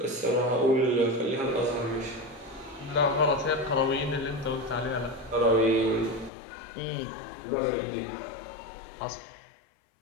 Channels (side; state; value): right; drops out; at 6.3 s